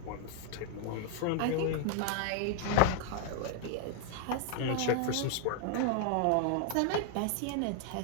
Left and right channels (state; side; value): different; both; correlation 0.00